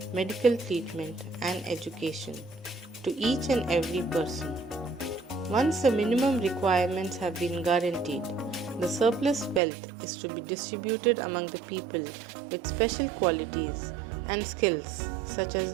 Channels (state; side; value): drops out; left; at 9.6 s